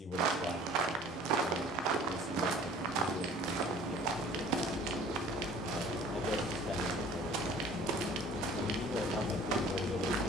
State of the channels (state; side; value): normal; both; correlation 0.50